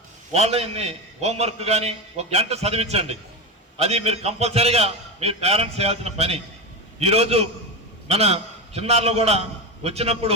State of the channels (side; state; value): both; normal; correlation 0.17